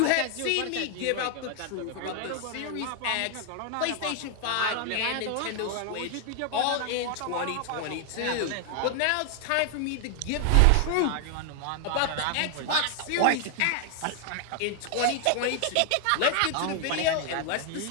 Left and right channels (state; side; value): different; both; correlation 0.00